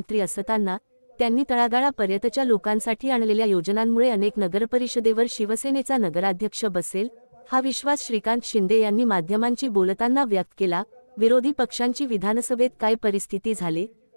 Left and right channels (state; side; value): inverted; both; correlation -1.00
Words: असताना त्यांनी तळागाळापर्यंतच्या लोकांसाठी आणलेल्या योजनांमुळे अनेक नगरपरिषदेवर शिवसेनेचा नगराध्यक्ष बसेल हा विश्वास श्रीकांत शिंदे यांनी माध्यमांशी बोलताना व्यक्त केला। विरोधी पक्षांची विधानसभेत काय परिस्थिती झाली